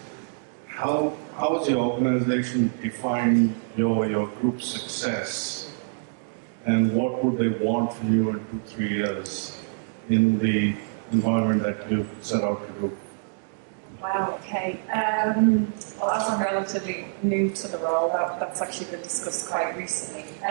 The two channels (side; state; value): left; silent; digital silence